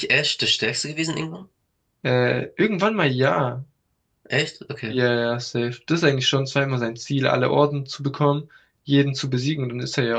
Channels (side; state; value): both; identical; correlation 1.00